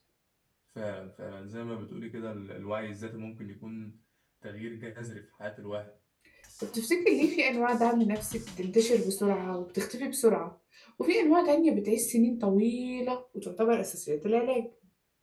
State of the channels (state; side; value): identical; both; correlation 1.00